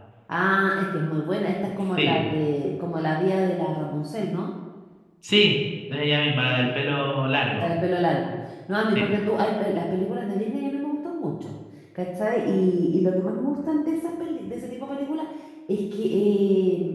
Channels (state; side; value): identical; both; correlation 1.00